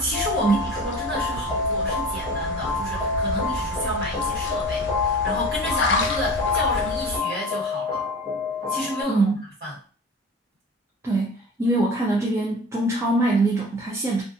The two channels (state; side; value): normal; both; correlation 0.38